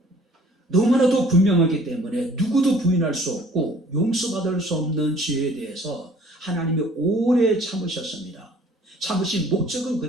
너무나도 분명하기 때문에 누구도 부인할 수 없고 용서받을 수 없는 죄에 대해서 하나님이 오래 참으셨습니다. 참으신 목적은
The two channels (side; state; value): both; normal; correlation 0.54